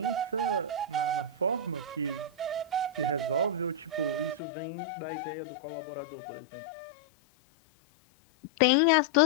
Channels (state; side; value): drops out; right; at 4.4 s